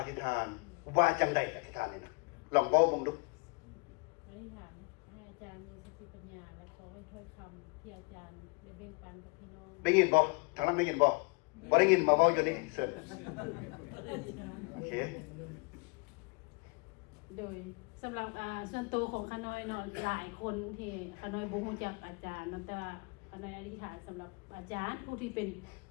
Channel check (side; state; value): right; quieter; 30.9 dB